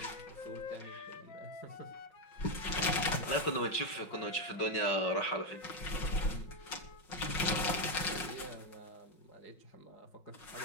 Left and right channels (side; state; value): right; late; 5.5 ms